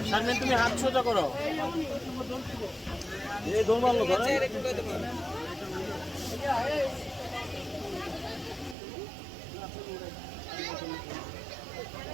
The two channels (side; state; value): left; drops out; at 8.8 s